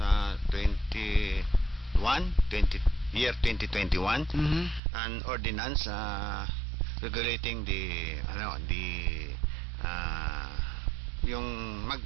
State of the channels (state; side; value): drops out; left; at 4.8 s